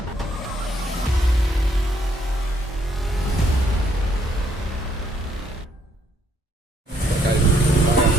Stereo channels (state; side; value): normal; both; correlation 0.69